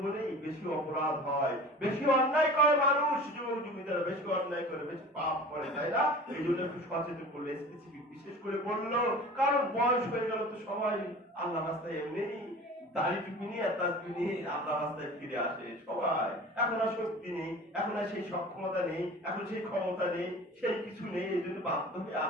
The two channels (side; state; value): both; normal; correlation 0.40